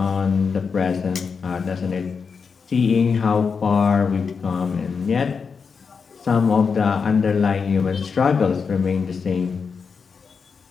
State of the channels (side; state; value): right; quieter; 5.6 dB